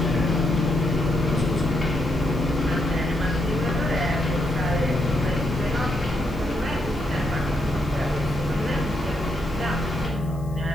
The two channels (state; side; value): noise; left; hiss, 26 dB below the sound